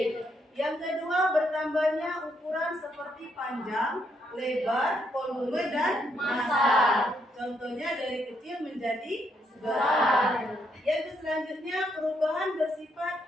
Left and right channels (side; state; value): both; normal; correlation 0.75